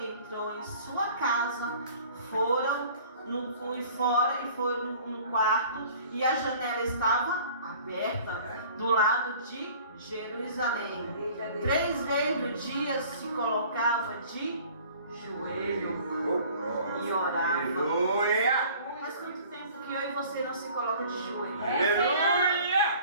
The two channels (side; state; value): both; inverted; correlation -0.49